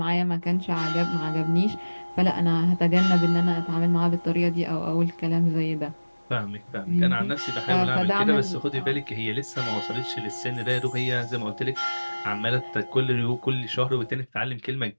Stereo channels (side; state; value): both; inverted; correlation -1.00